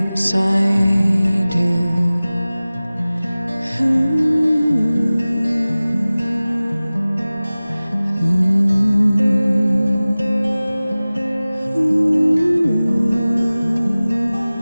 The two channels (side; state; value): both; inverted; correlation -0.98